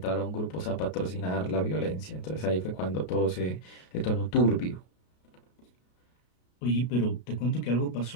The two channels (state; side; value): late; right; 33 ms